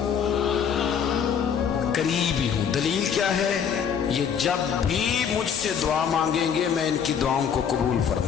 قریب ہی ہوں۔ دلیل کیا ہے؟ یہ جب بھی مجھ سے دعا مانگیں گے میں ان کی دعاؤں کو قبول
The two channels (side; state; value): right; quieter; 7.5 dB